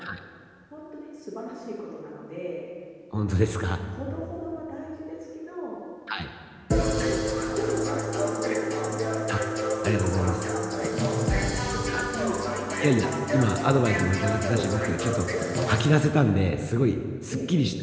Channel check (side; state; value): both; identical; correlation 1.00